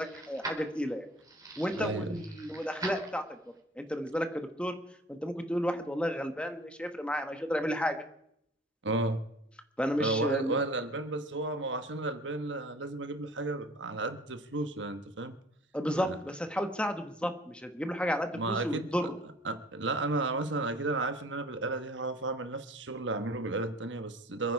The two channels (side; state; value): both; normal; correlation 0.50